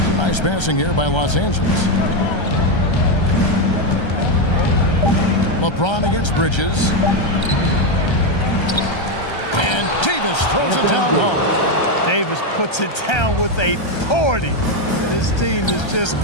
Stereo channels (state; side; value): late; right; 1.3 ms